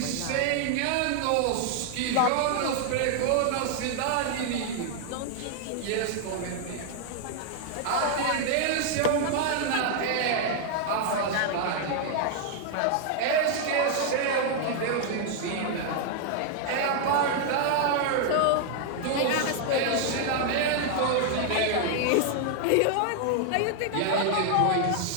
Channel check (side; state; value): both; different; correlation 0.00